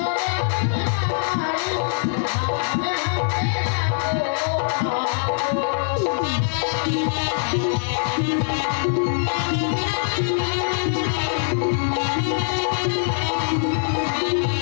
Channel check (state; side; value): silent; right; digital silence